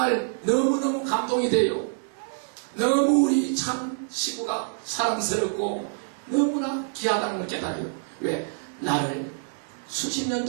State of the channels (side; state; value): left; silent; 61 dB below the other